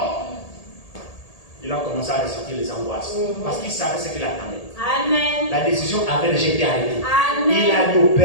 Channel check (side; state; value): right; late; 1.8 ms